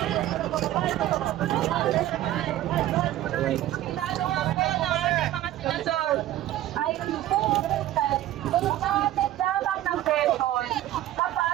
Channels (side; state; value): left; quieter; 13.7 dB